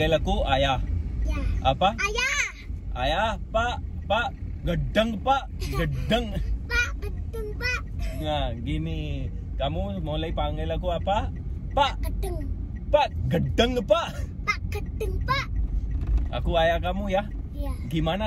aku ayah. Ya. Apa? Ayah. Ayah, Pak, gedeng Pak, gedeng. Pak, gedeng Pak. Nah, gini. Kamu mulai panggil aku apa? Pak, Gedeng. Pak, gedeng Pak. Pak, gedeng Pak. Aku ayah kamu ya. Iya.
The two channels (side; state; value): both; identical; correlation 1.00